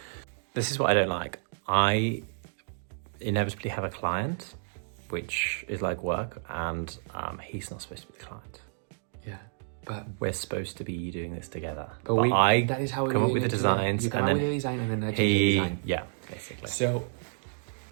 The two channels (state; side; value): silent; left; digital silence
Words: This is what I don't like. I inevitably have a client, which is like work, and he's not supposed to be the client. Yeah, but we're supposed to be doing this together. But that is how we come up with the designs. You come up with the design and then I change the design. Yeah, basically. So